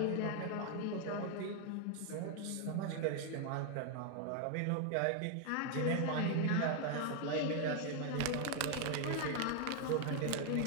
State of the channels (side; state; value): both; different; correlation 0.00